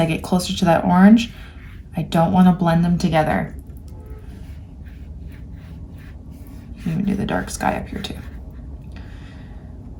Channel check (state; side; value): identical; both; correlation 1.00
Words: get closer to that orange. I don't want to blend them together. You can even do the dark sky up here too.